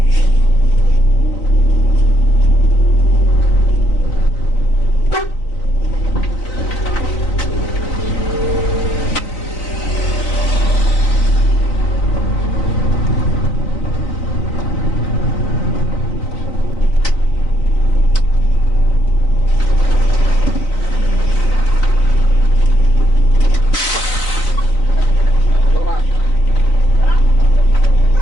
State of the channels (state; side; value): late; right; 4.0 ms